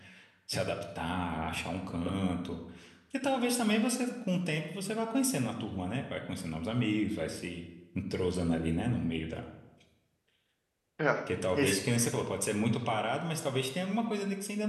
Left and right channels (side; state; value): both; identical; correlation 1.00